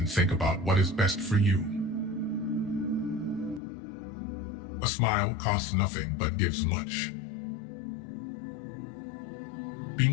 think about what is best for you. A smile costs nothing but gives much. Be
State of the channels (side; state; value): right; drops out; at 3.6 s